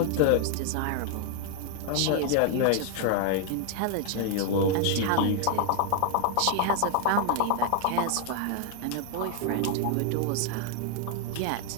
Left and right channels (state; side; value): different; both; correlation 0.00